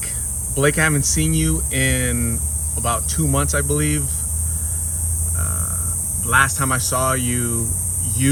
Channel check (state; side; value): identical; both; correlation 1.00